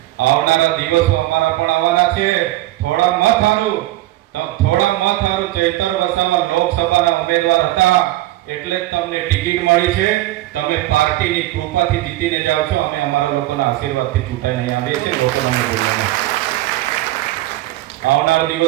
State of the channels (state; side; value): quieter; left; 16.5 dB